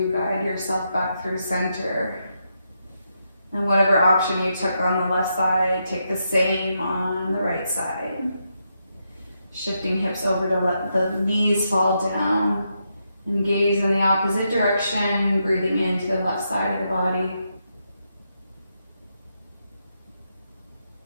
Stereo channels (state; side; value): inverted; both; correlation -0.82